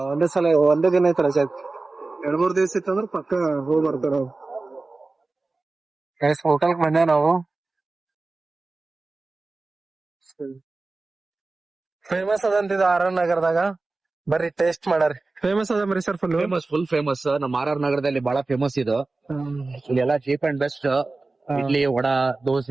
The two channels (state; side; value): quieter; left; 3.5 dB